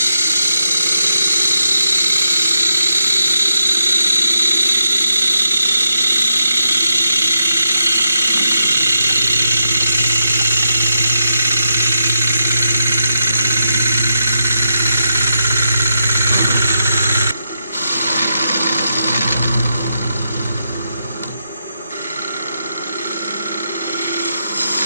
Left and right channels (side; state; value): both; inverted; correlation -0.83